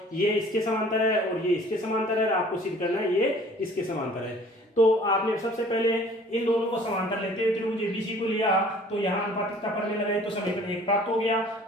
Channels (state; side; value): normal; both; correlation 0.51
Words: ये इसके समांतर है और ये इसके समांतर है। आपको सिद्ध करना है ये इसके समांतर है। तो आपने सबसे पहले इन दोनों को समांतर लेते हुए त्रिभुज ABC को लिया, तो यहाँ अनुपातिकता प्रमेय लगाए तो समीकरण 1 प्राप्त हो गया।